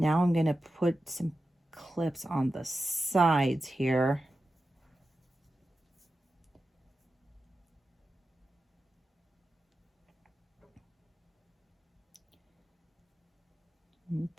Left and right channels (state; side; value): normal; both; correlation 0.92